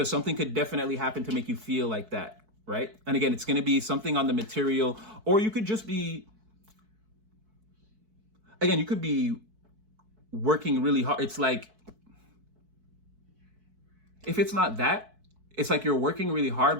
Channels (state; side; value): late; left; 4.6 ms